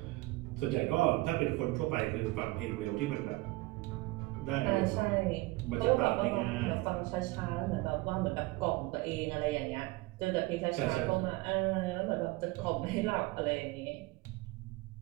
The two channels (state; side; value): quieter; left; 21.1 dB